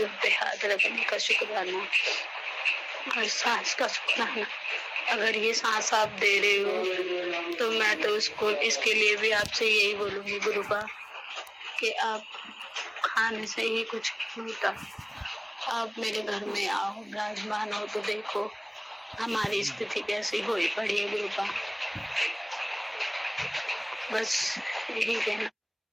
पे हाथ रखने का शुक्राना। और सांस का शुक्राना। अगर ये सांस आप दे रहे हो तो मैं तो उसको इसके लिए भी आपसे यही बोलूंगी गुरुपा कि आप खाने से ही कुछ नहीं होता। आप मेरे घर में आओ, विराजमान हो तो देखो हमारी स्थिति कैसी हुई पड़ी है गुरुपा। बस यही कहना।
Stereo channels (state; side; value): identical; both; correlation 1.00